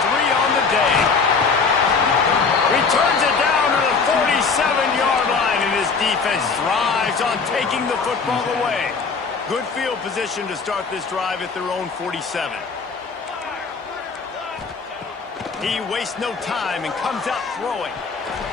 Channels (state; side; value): quieter; right; 5.0 dB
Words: on the day. Returns it down to the 47-yard line, and his defense thrives on taking the football away. Good field position to start this drive at their own 47. He wastes no time and comes out throwing.